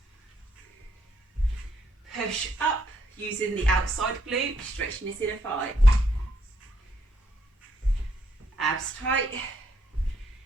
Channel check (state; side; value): normal; both; correlation 0.73